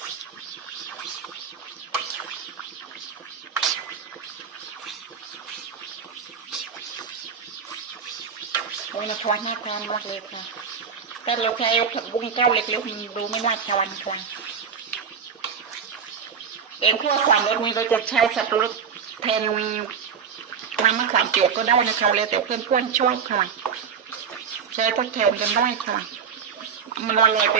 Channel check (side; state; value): left; quieter; 6.7 dB